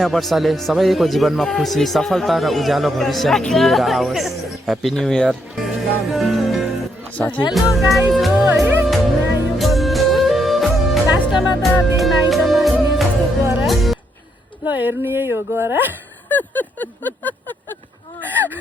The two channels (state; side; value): normal; both; correlation 0.76